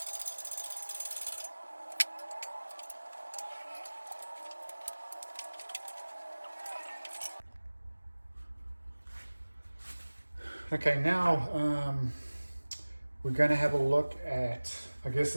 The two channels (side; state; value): both; inverted; correlation -1.00